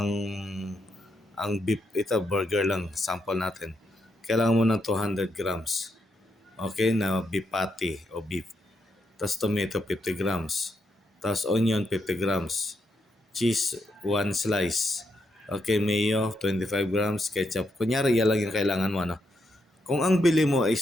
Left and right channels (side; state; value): both; normal; correlation 0.80